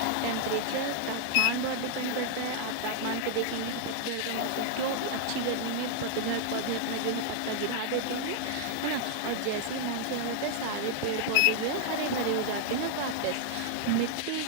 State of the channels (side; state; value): both; different; correlation -0.01